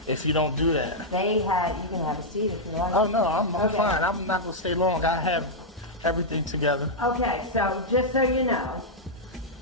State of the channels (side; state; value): both; normal; correlation -0.06